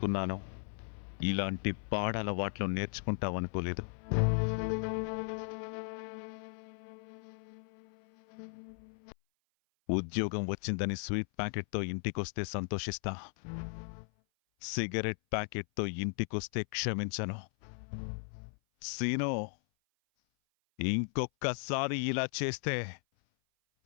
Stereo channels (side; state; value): right; silent; 54 dB below the other